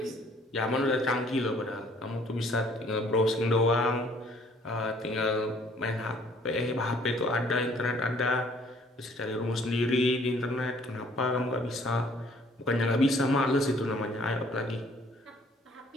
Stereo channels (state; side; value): normal; both; correlation 0.59